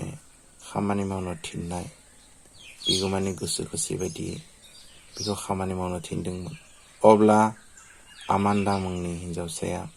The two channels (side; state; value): both; identical; correlation 1.00